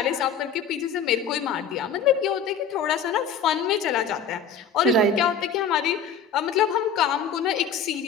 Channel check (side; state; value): right; quieter; 6.1 dB